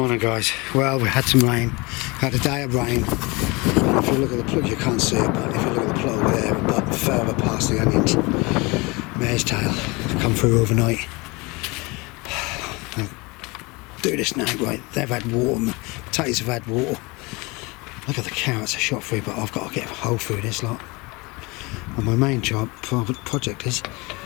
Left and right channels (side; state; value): right; quieter; 25.7 dB